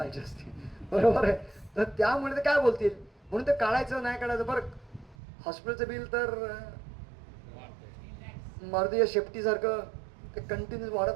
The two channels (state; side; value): drops out; left; at 5.2 s